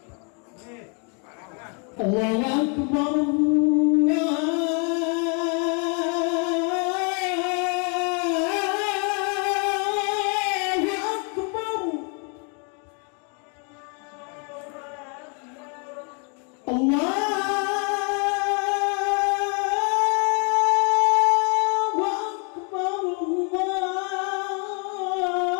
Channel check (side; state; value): right; quieter; 37.5 dB